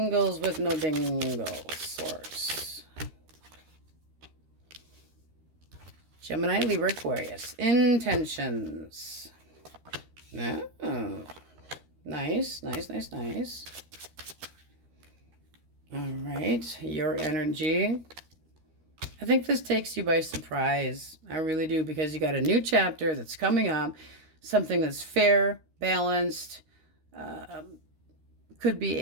with no dingles. Source. Gemini, Libra, Aquarius. Intentions. Oh, nice, nice, nice, nice. All right, your energy. I think this takes you by surprise. I really do, because you got a new chapter that's coming up, something that's fair, balanced, could be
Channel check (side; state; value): left; late; 13 ms